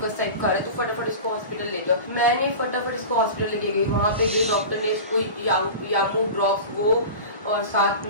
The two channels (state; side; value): inverted; both; correlation -0.32